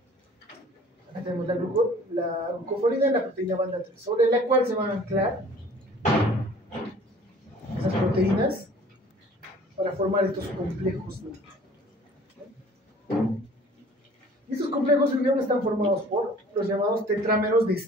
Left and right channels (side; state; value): both; normal; correlation 0.50